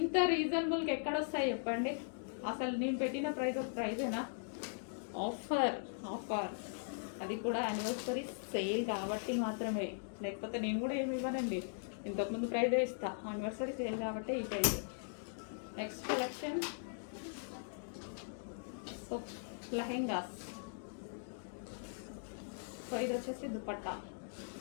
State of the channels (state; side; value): silent; right; digital silence